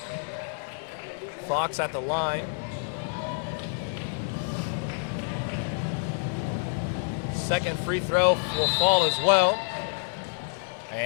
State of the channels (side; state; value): right; silent; digital silence